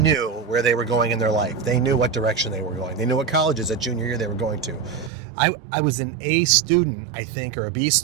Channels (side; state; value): left; drops out; at 5.1 s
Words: where they were going in their life. They knew what direction they were going. They knew what colleges at junior year they were going to. I was an A student, I think, or a B